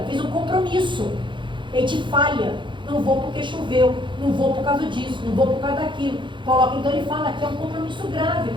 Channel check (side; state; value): left; late; 0.23 ms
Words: fez um compromisso. A gente falha. Não vou porque choveu, não vou por causa disso, não vou por causa daquilo. Então ele fala que é um compromisso grave,